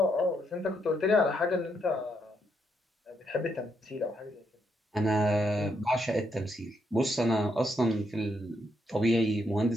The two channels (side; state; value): both; normal; correlation 0.77